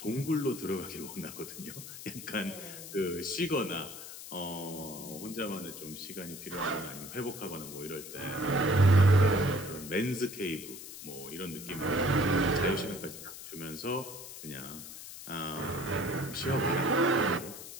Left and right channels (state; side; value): noise; left; hiss, 12 dB below the sound